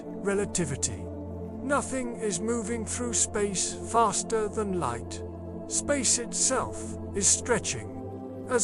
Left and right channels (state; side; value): identical; both; correlation 1.00